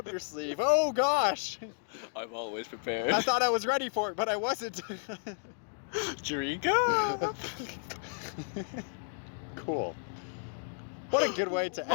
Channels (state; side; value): silent; right; digital silence